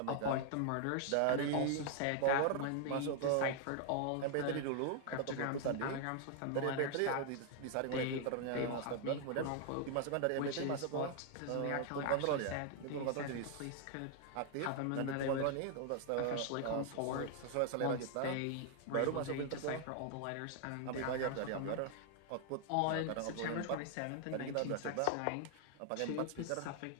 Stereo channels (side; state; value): both; different; correlation 0.00